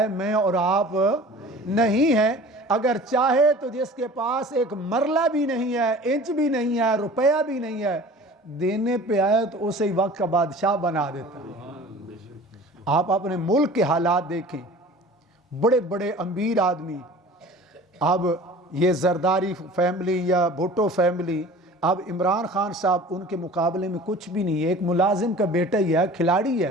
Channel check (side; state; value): both; normal; correlation 0.43